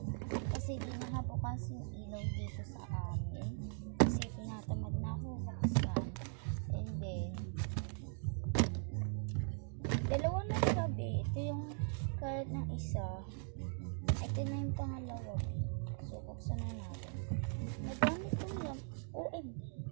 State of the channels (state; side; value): silent; left; 51 dB below the other